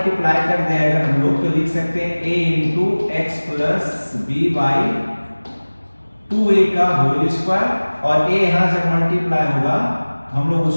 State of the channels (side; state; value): both; inverted; correlation -1.00